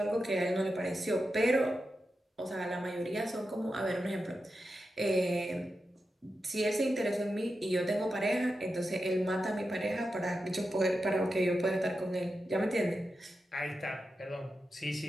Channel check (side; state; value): both; normal; correlation 0.89